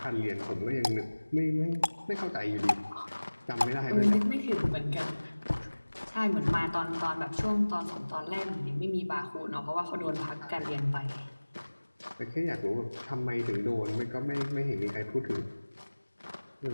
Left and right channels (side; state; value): both; inverted; correlation -1.00